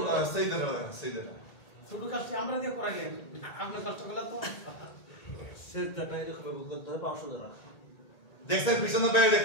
সেইদারা শুধু কাজটি আমরা দিয়ে করাইলেন, আপনার কষ্টগুলো তো সেটাটা এরকম করতে হবে 500 টাকা। দেখছেন পিছনে বাইরে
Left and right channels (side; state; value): right; late; 1.9 ms